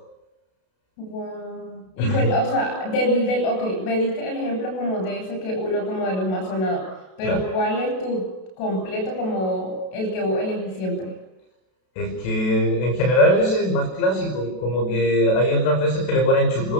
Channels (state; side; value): late; right; 32 ms